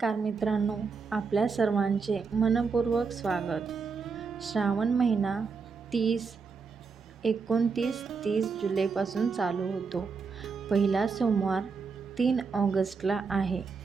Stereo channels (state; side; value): quieter; left; 5.1 dB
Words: मित्रांनो, आपल्या सर्वांचे मनपूर्वक स्वागत. श्रावण महिना 29-30 जुलैपासून चालू होतो. पहिला सोमवार 3 ऑगस्टला आहे.